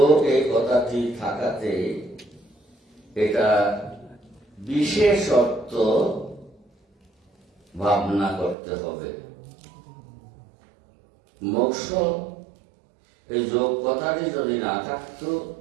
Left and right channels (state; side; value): drops out; left; at 8.6 s